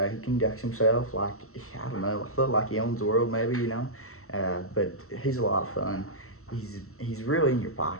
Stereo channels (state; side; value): late; right; 0.63 ms